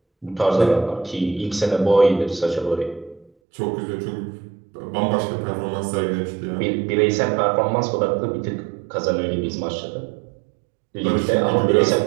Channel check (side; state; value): left; drops out; at 3.3 s